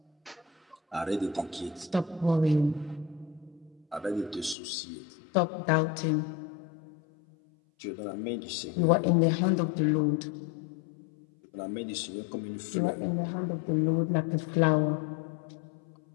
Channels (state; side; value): drops out; right; at 4.5 s